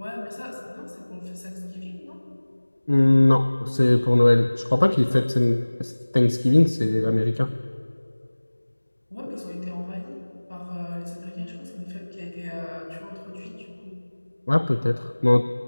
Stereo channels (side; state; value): both; inverted; correlation -1.00